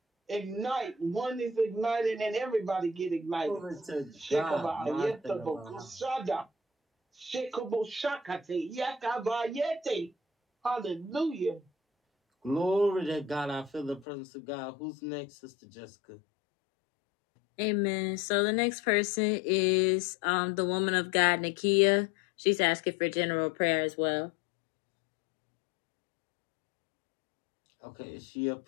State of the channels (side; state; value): right; drops out; at 14.1 s